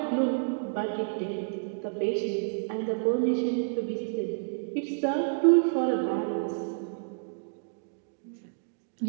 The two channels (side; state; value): left; silent; digital silence